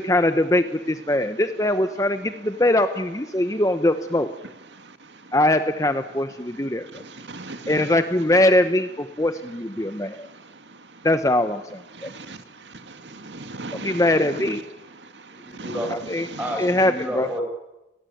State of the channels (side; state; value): both; normal; correlation 0.62